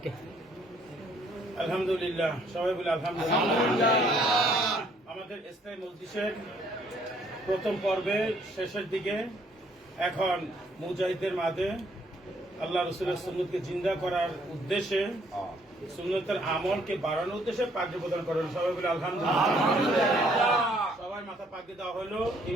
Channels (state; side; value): normal; both; correlation 0.65